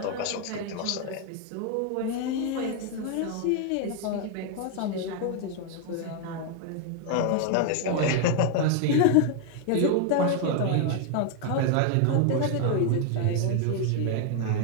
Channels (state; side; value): different; both; correlation 0.00